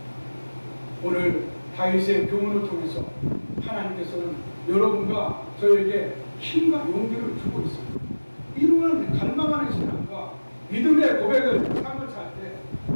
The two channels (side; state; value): both; inverted; correlation -1.00